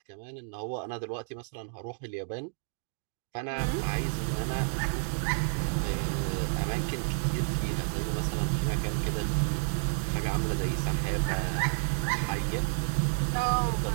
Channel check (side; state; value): left; silent; digital silence